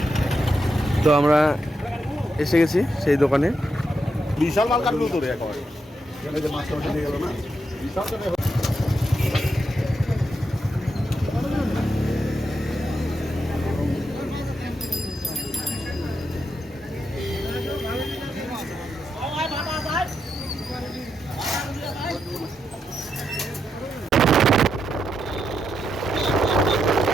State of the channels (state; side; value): normal; both; correlation 0.83